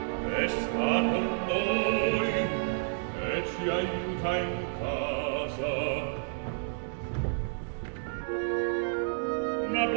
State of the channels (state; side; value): silent; left; digital silence